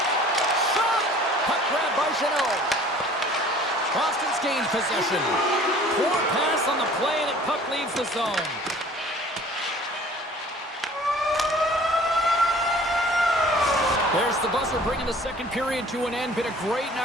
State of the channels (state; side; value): normal; both; correlation 0.50